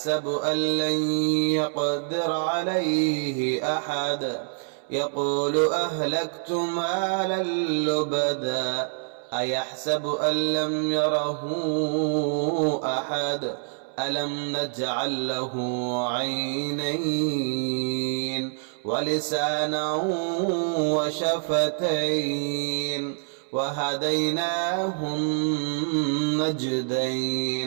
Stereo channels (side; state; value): left; silent; 61 dB below the other